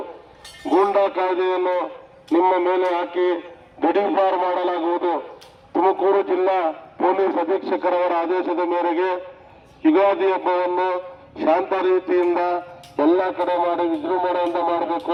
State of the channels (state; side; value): identical; both; correlation 1.00